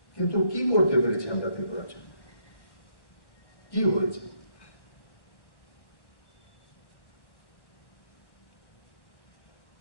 কিন্তু কি করতে পেরেছি আমরা ত্রিপুরার জন্য? কি হয়েছে?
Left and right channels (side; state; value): right; late; 1.1 ms